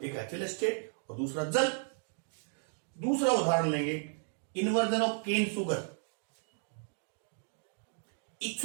एक एथिल एस्टेट और दूसरा जल। दूसरा उदाहरण लेंगे, इन्वर्जन ऑफ केन शुगर,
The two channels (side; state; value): left; silent; 55 dB below the other